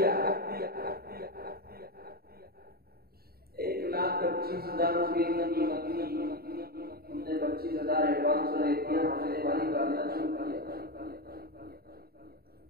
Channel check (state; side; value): late; left; 0.45 ms